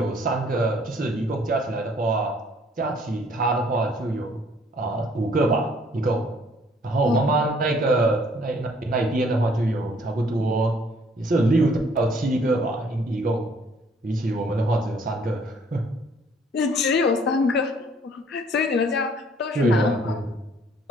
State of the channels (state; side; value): normal; both; correlation 0.61